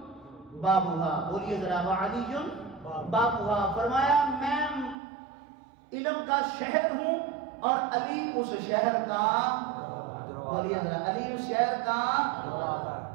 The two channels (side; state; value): left; drops out; at 5.0 s